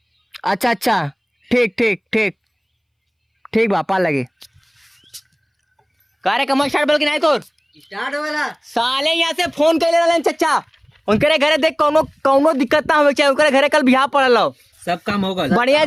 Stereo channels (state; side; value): identical; both; correlation 1.00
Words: अच्छा अच्छा ठीक ठीक ठीक ठीक बा पा लगे। कार्य कमर स्टार्ट बोल के नहीं तो स्टार्ट वाला साले यहाँ से फोन कर ले रहे चचा। उनके घरे देख कौनो दिक्कत ना हो चाहिए। उनके घरे कल बिहार पड़ल हो, सब काम होगा। बढ़िया